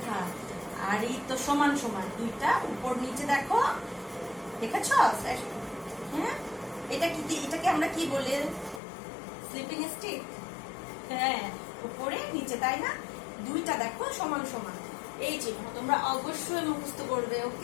আর এই তো সমান সমান, দুইটা উপর নিচে দেখো, দেখেছ? হ্যাঁ, এটাকে আমরা কি বলি? Sleeping stick. হ্যাঁ, উপরে নিচে, তাই না? দুইটা দেখো সমান সমান, এই চিহ্ন তোমরা অবশ্যই মুখস্থ করবে,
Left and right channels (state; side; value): drops out; right; at 8.8 s